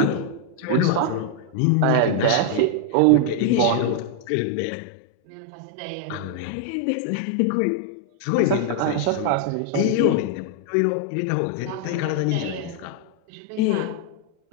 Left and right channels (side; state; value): both; different; correlation 0.00